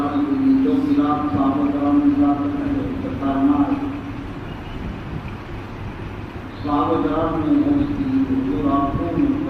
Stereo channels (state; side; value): identical; both; correlation 1.00